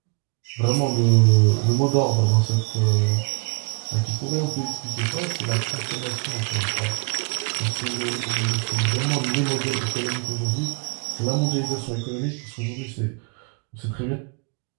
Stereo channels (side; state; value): left; quieter; 35.5 dB